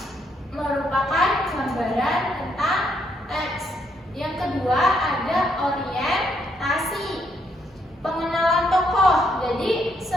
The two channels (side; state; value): both; normal; correlation 0.74